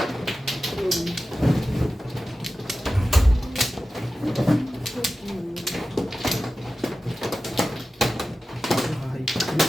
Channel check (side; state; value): both; normal; correlation 0.94